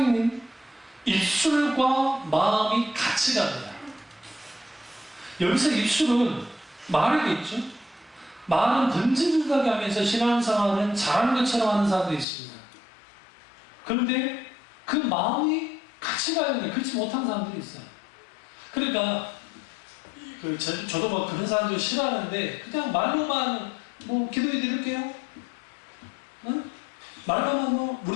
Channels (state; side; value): drops out; right; at 12.2 s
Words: 입술과 마음이 같이 갑니다. 여기서 입술은 말이겠죠. 말은 던지듯하게 하면서 신앙생활은 잘하는 것처럼 하는 사람도 있습니다. 그런데 그 마음이 같이 가야 돼요. 그렇지 못한 사람들이 있어요. 그러니까 저도 그런 사람들 싫어하는데 그냥 말로만 기도해 드릴게요. 응? 말로만